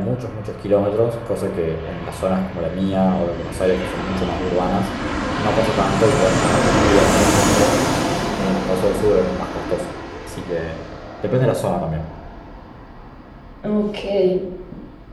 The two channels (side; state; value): both; identical; correlation 1.00